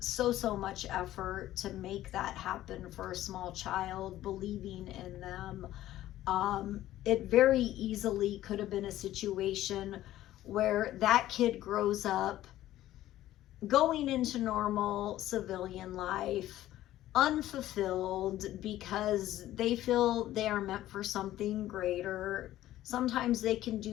so much effort to make that happen for a small child, believing in them, it very easily could have been a situation where that kid grows up going into normal civilian life, unfulfilled, because they feel they are meant for something greater. Sometimes they can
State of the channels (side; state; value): right; quieter; 14.1 dB